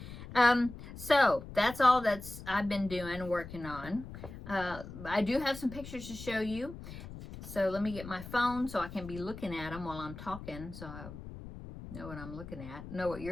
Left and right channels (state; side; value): noise; left; rumble, 12 dB below the sound